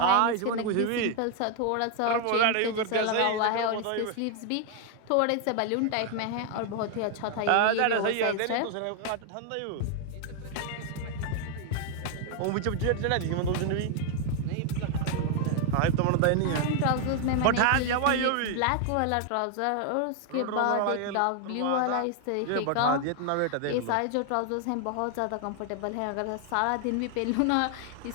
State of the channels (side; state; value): both; different; correlation 0.00